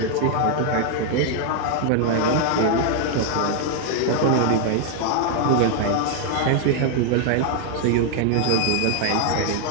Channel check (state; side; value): different; both; correlation 0.00